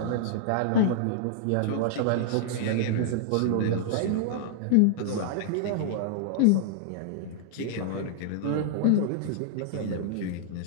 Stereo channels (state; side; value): different; both; correlation -0.01